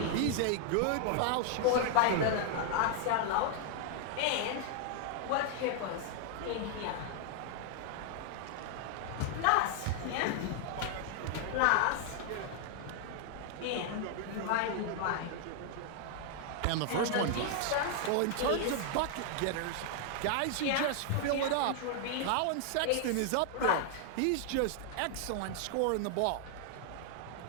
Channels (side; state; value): both; different; correlation 0.00